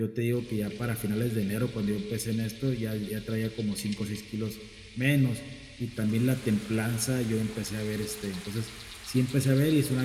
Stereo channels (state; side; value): identical; both; correlation 1.00